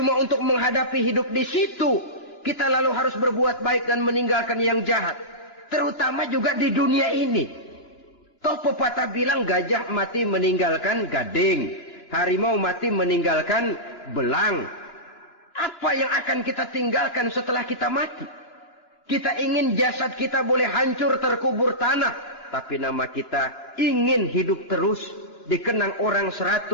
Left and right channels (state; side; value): late; right; 2.9 ms